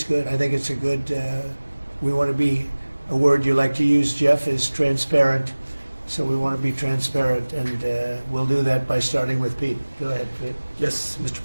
good. I think it's a good, we want to be, a word you like to use, Jeff, is transparent. So we want to be transparent, and we'll do that by starting with Pete. Go ahead, Pete. Yes, Mr.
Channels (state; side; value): inverted; both; correlation -1.00